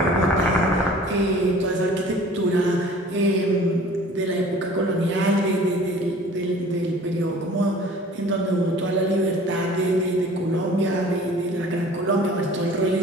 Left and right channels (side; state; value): both; normal; correlation 0.47